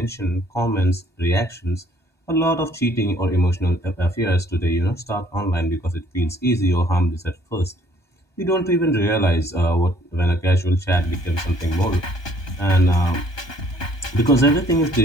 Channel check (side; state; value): right; late; 1.2 ms